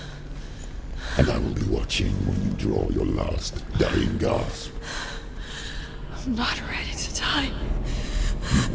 And I will be watching when you draw your last dying gasp. I'm not ready to die.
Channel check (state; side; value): identical; both; correlation 1.00